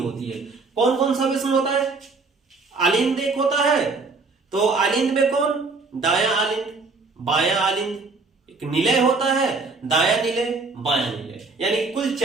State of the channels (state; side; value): quieter; left; 4.0 dB